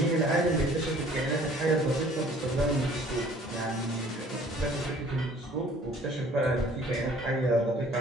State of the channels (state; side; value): normal; both; correlation 0.54